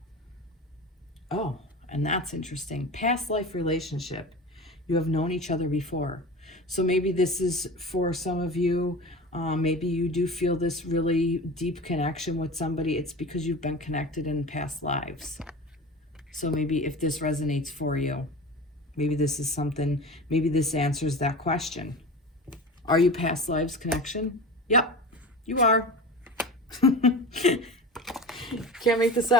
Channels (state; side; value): normal; both; correlation 0.32